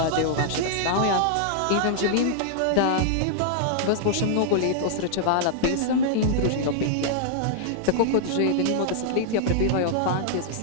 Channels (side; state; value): both; different; correlation -0.01